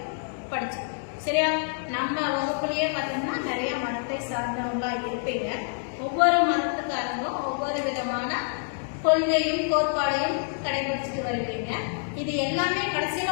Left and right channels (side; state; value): right; silent; digital silence